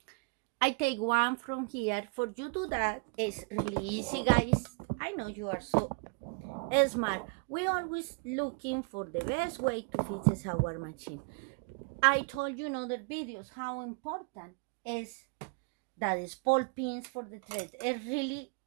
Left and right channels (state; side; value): quieter; left; 34.9 dB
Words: I take one from here. For you to do that is really easy, guys. I know you are so smart. We always looking for the best way to fix our machine. I told you in other videos how important is that is Spool pins for the thread. It really,